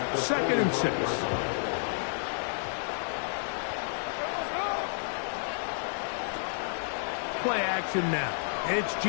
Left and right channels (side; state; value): right; silent; digital silence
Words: 2nd and 6. Play action now. It's